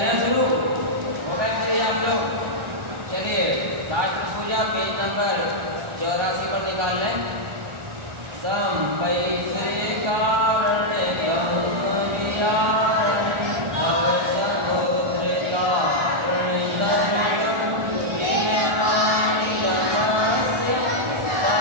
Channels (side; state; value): left; late; 1.4 ms